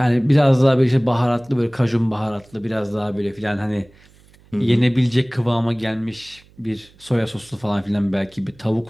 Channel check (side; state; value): right; noise; hum, 28 dB below the sound